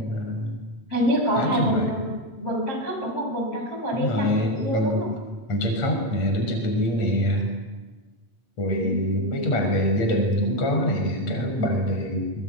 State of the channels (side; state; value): right; late; 8.5 ms